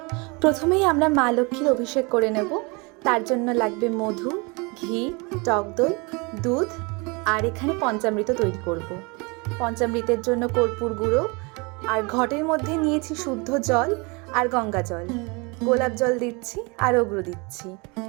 প্রথমেই আমরা মা লক্ষ্মীর অভিষেক করে নেব। তার জন্য লাগবে মধু, ঘি, টক দই, দুধ আর এখানে পঞ্চামৃত তৈরি করব। পঞ্চামৃতের জন্য কর্পূর গুঁড়ো আর ঘটের মধ্যে নিয়েছি শুদ্ধ জল আর গঙ্গা জল। গোলাপ জল দিচ্ছি আর অগ্রু দিচ্ছি,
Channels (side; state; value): left; quieter; 28.9 dB